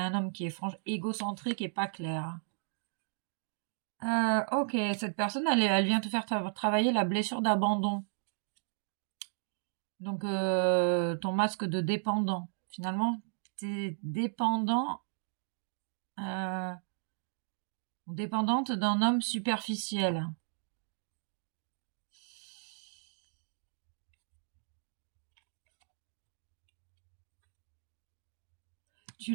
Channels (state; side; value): silent; left; digital silence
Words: un homme qui est franchement égocentrique et pas clair. Ok, cette personne, elle vient te faire travailler la blessure d'abandon. Donc, ton masque de dépendant. Finalement, tu es dépendant, euh, ou dépendante d'un homme superficiel. Tu